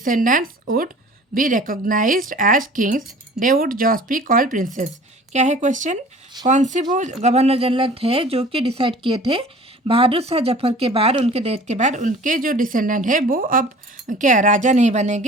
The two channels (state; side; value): normal; both; correlation 0.46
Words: would be recognized as kings, they would just be called princes। क्या है question? कौन से वो governor general थे जो कि decide किए थे बहादुर शाह जफर के बाद, उनके डेथ के बाद उनके जो डिसेंडेंट है वो अब क्या राजा नहीं